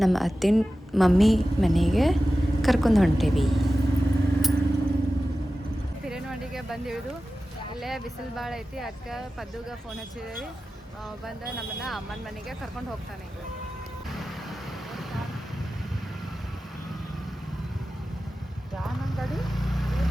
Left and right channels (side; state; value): both; normal; correlation 0.94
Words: ನಮ್ಮ ಅತ್ತಿನ ಮಮ್ಮಿ ಮನೆಗೆ ಕರ್ಕೊಂಡು ಹೊಂಟೀವಿ. ಹಿರೇನವಾಡಿಗೆ ಬಂದು ಇಳಿದು ಇಲ್ಲೇ ಬಿಸಿಲು ಭಾಳ ಐತಿ. ಅದಕ್ಕೆ ಪದ್ದುಗೆ ಫೋನ್ ಹಚ್ಚಿದೇವಿ. ಬಂದು ನಮ್ಮನ್ನು ಅಮ್ಮನ ಮನೆಗೆ ಕರ್ಕೊಂಡು ಹೋಗ್ತಾನೆ. ಗಾಡಿ